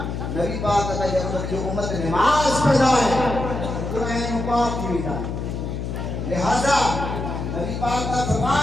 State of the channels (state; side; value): noise; left; hum, 4 dB below the sound